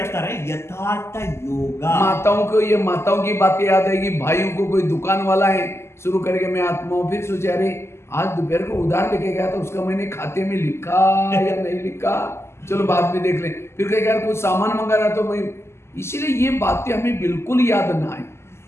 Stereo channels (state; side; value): late; right; 0.13 ms